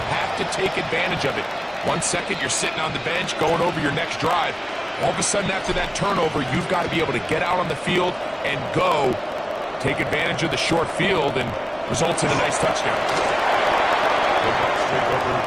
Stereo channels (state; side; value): identical; both; correlation 1.00